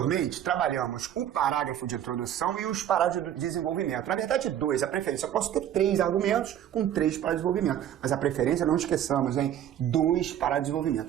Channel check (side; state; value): left; quieter; 10.6 dB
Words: trabalhamos o parágrafo de introdução e os parágrafos de desenvolvimento. Na verdade, dois, a preferência. Eu posso ter 3 argumentos com 3 parágrafos de desenvolvimento. Mas a preferência, não esqueçamos, hein? 2 parágrafos de